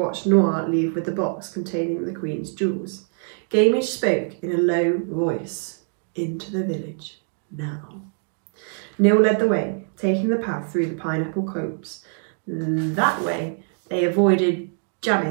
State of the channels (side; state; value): left; silent; 59 dB below the other